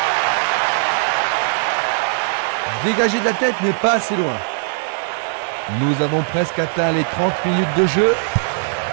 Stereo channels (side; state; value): left; silent; digital silence